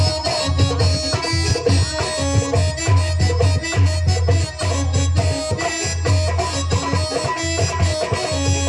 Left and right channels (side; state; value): both; identical; correlation 1.00